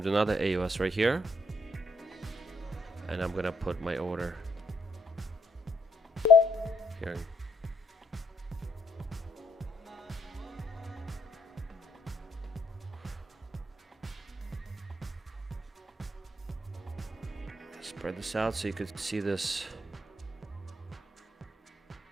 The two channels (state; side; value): normal; both; correlation 0.72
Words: another AOS right here. And I'm gonna put my order here. spread this out so you could see this